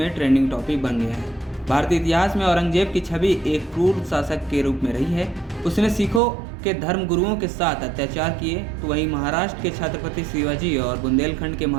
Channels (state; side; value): drops out; left; at 6.2 s